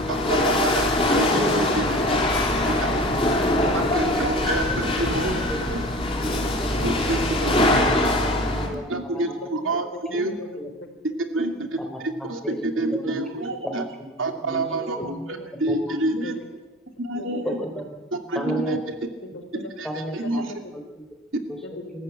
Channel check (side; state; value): both; normal; correlation 0.38